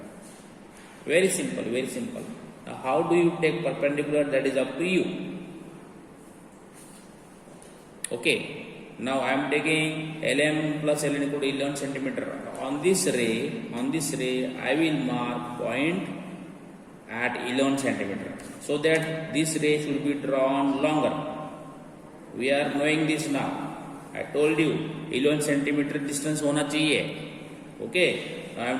Very simple, very simple. Now, how do you take perpendicular? That is up to you. Okay. Now I am taking LM plus LN equal to 11 centimeter. On this ray, I will mark point at 11 centimeter, so that this ray should be drawn longer. We are knowing this now. I told you 11 centimeter distance होना चाहिए. Okay. Now I am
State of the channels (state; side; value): identical; both; correlation 1.00